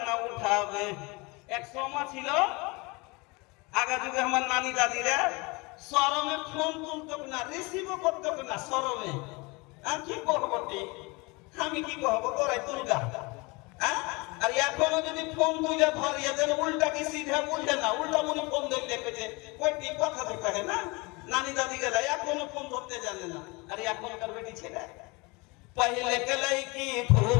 न उठावे। एक सोमा ছিল আগে যুগে আমার নানি দাদিরা শরমে ফোন তুলতো না, রিসিভও করতো না শরমে। আমি কি করবো, আমি কি করবো, তোরাই তুলগা। আর এখনো যদি ফোন তুলে ধরিয়ে দেন, উল্টা কি সিধা বুঝে না, উল্টা মনে ফোন ধরে দেখেছে কয়টি কথা তো কহে না। নানি দাদি গেলা এখনো ফোন ধরতে জানে না। আর এখনকার বেটি ছেলে पहले के लड़की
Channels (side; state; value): right; quieter; 26.4 dB